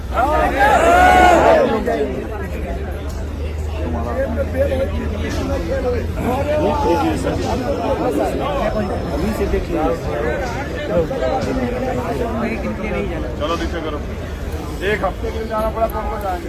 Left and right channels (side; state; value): both; identical; correlation 1.00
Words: चलो नीचे करो। एक हफ्ते के लिए जाना पड़ा कौन कौन जाएंगे?